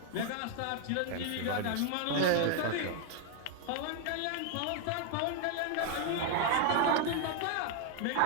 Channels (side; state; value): both; different; correlation 0.00